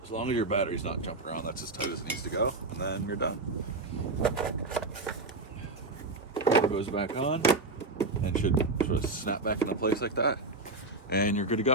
As long as your battery's not jumping around, that's as tight as it needs to go, and then you're done. Cover goes back on, and should sort of snap back into place like that, and you're good to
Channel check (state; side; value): quieter; left; 3.3 dB